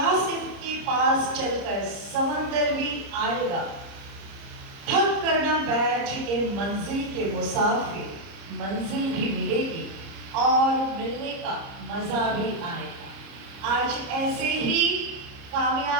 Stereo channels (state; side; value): late; left; 30 ms